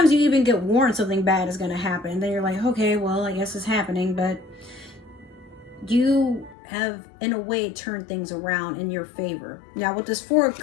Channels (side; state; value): right; drops out; at 6.6 s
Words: you even get warned something bad is going to happen, and then you're like, okay, well, I guess it's happening. But you have, in a way, turned things around in your favor. Now, with this Four of